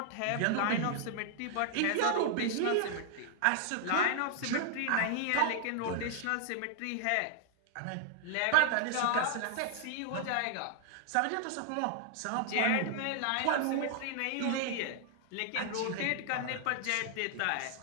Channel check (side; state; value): both; different; correlation 0.00